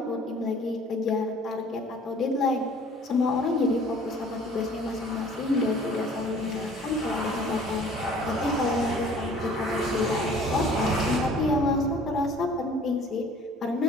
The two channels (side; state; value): both; normal; correlation 0.51